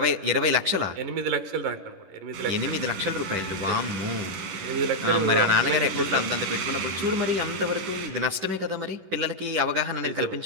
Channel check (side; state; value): left; late; 10 ms